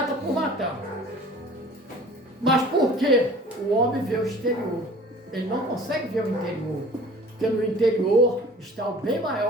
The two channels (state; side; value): normal; both; correlation 0.46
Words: por matar. Mas por quê? O homem vê o exterior. Ele não consegue ver o interior. Porque no interior está o bem